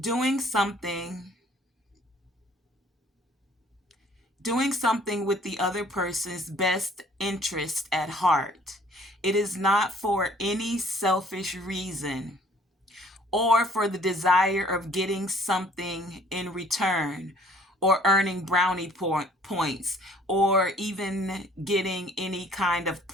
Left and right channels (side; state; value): both; normal; correlation 0.57